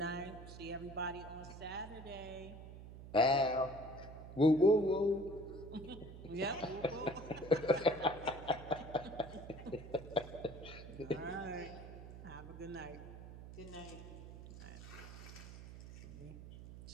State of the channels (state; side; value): noise; right; hum, 13 dB below the sound